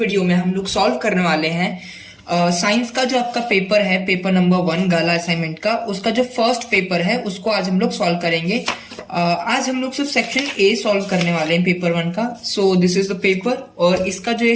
में हम लोग सॉल्व करने वाले हैं साइंस का जो आपका पेपर है, पेपर नंबर 1 गाला असाइनमेंट का, उसका जो फर्स्ट पेपर है उसको आज हम लोग सॉल्व करेंगे। आज हम लोग सिर्फ सेक्शन ए सॉल्व करने वाले हैं पेपर 1 का। So this is the paper और इसका जो ये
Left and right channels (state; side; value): identical; both; correlation 1.00